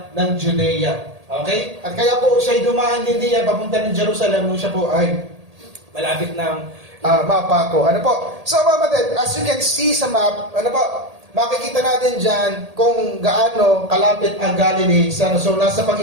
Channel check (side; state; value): left; late; 1.8 ms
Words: ng Judea. Okay? At kaya po siya dumaan din diyan papunta ng Jerusalem nung siya po ay malapit ng mapa ko. So, mga kapatid, as you can see sa map, makikita natin dyan kung gaano kalapit ang Galilee. So, nasa